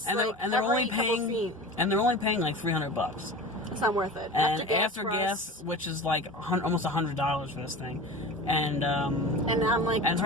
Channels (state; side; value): normal; both; correlation 0.33